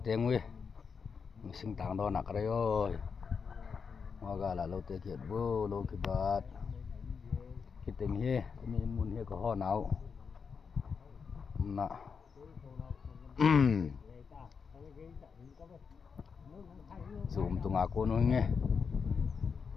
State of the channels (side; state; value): right; quieter; 5.8 dB